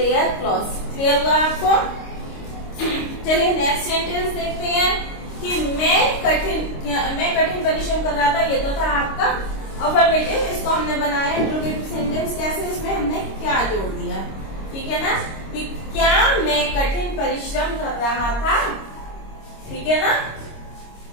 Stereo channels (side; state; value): right; late; 26 ms